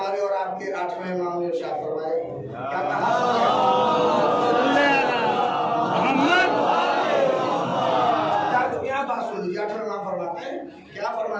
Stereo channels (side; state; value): both; identical; correlation 1.00